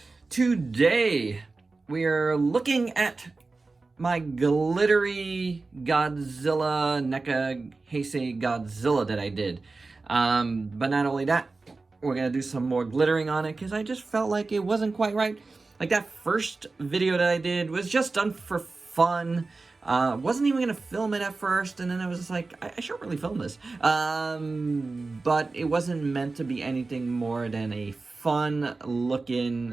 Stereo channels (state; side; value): quieter; left; 3.7 dB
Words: Today, we are looking at my glittery Godzilla, NECA Heisei Godzilla that I did. But not only that, we're gonna do some more glittering on it, because I just felt like it wasn't quite right. Like, that first video that I did was just done for fun. Wasn't even gonna film it at first, and then I was just like, I should really film this. But it wasn't meant to be anything more than a fun